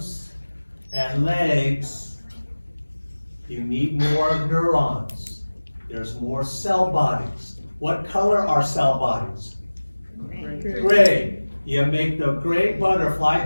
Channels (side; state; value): both; inverted; correlation -1.00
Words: you need more neurons. There's more cell bodies. What color are cell bodies? Gray. You make the gray butterfly